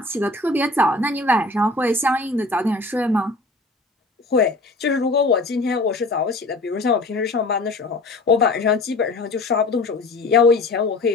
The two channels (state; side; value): quieter; right; 3.0 dB